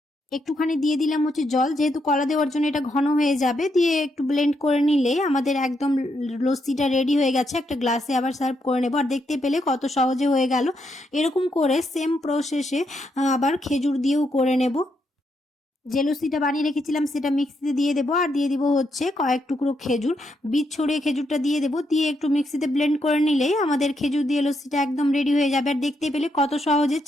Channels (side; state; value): both; normal; correlation 0.79